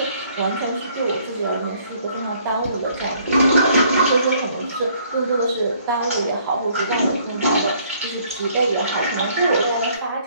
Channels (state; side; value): inverted; both; correlation -0.63